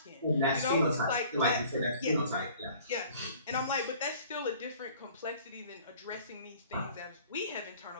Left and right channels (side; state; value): both; inverted; correlation -0.51